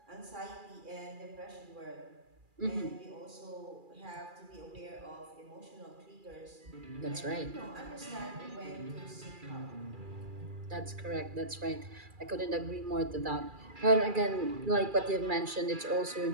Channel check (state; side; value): late; left; 2.4 ms